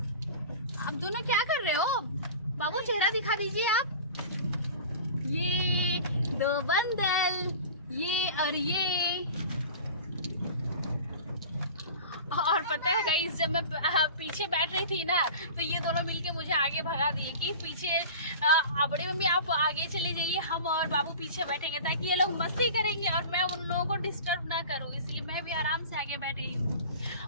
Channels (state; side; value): inverted; both; correlation -0.37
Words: आप दोनों क्या कर रहे हो? बाबू चेहरा दिखा दीजिए आप। ये दो बंदल, ये और ये। और पता है गाइस, जब मैं पीछे बैठ रही थी ना तो ये दोनों मिलके मुझे आगे भगा दिए कि पीछे बड़ी मम्मी आप आगे चले जाइए, हम और बाबू पीछे बैठेंगे ताकि ये लोग मस्ती करेंगे और मैं उन लोगों को डिस्टर्ब ना करूँ, इसलिए मैं भी आराम से आगे बैठ गई हूँ।